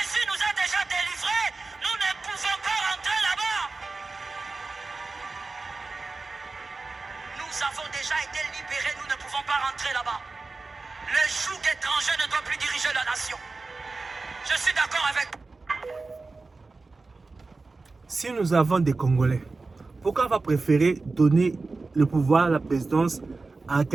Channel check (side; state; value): left; quieter; 3.7 dB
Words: nous a déjà délivrés. Nous ne pouvons pas rentrer là-bas. Nous avons déjà été libérés. Nous ne pouvons pas rentrer là-bas. Le joug étranger ne doit plus diriger la nation. Je suis d'accord avec vous. Si nous avons des Congolais, pourquoi on va préférer donner le pouvoir, la présidence à